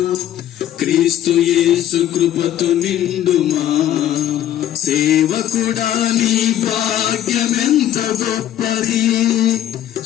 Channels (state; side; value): quieter; right; 11.8 dB